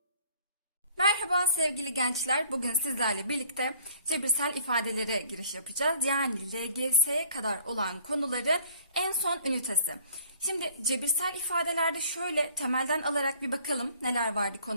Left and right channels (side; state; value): both; inverted; correlation -0.55